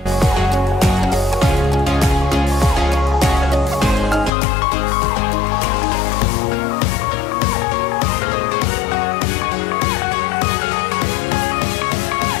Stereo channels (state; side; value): drops out; right; at 4.3 s